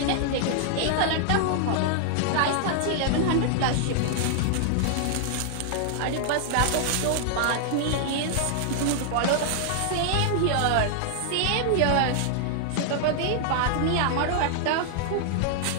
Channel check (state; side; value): different; both; correlation -0.01